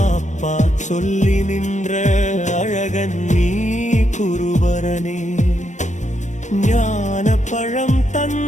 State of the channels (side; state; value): right; late; 0.35 ms